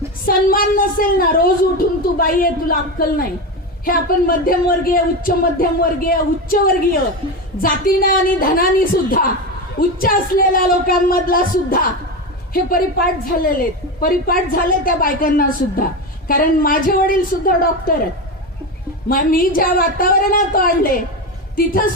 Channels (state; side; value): normal; both; correlation 0.18